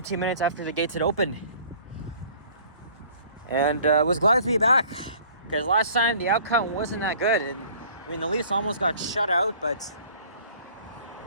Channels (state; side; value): inverted; both; correlation -0.51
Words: minutes after the gates had opened. And was glad to be back, because last time the outcome wasn't that good. And I mean, the Leafs almost got shut out, but